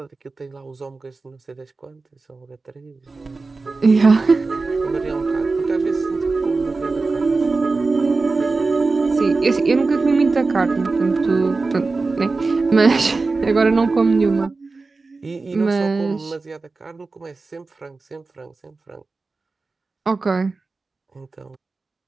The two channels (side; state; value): left; quieter; 3.8 dB